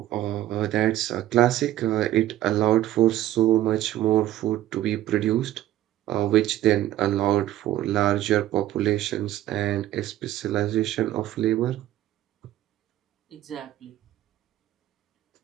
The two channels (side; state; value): left; quieter; 13.7 dB